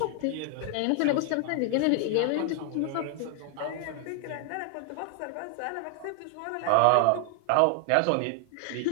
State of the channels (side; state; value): both; different; correlation 0.00